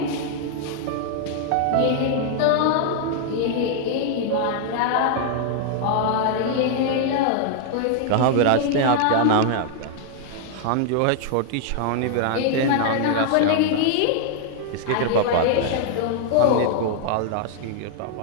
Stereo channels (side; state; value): both; different; correlation 0.00